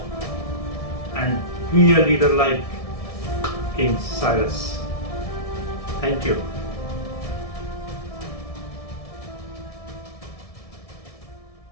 and be a leader like King Cyrus. Thank you.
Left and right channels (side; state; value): right; late; 1.7 ms